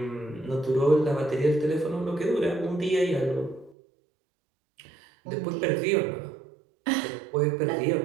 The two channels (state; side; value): drops out; left; at 3.8 s